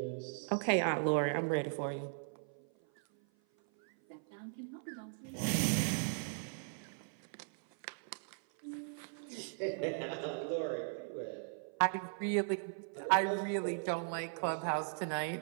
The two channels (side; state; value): left; silent; 52 dB below the other